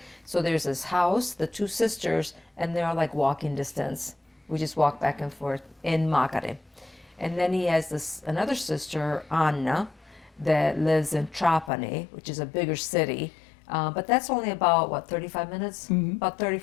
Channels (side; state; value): right; drops out; at 11.7 s